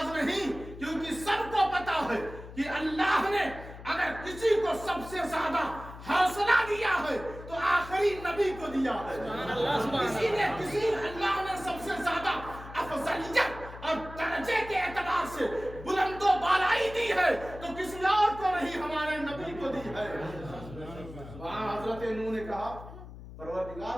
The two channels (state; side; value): noise; left; hum, 14 dB below the sound